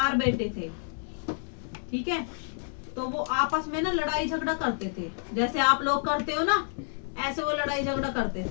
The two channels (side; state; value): right; silent; 59 dB below the other